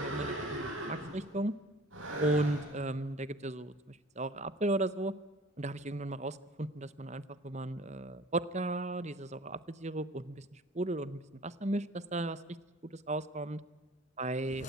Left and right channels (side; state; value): both; normal; correlation 0.46